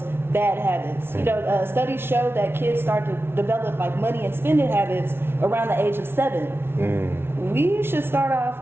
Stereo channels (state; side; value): late; left; 0.12 ms